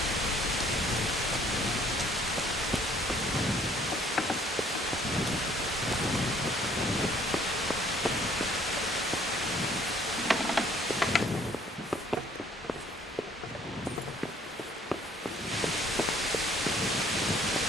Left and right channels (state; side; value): normal; both; correlation 0.60